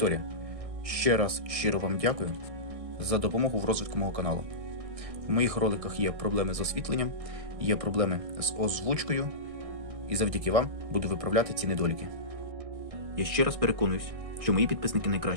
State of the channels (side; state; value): left; late; 1.6 ms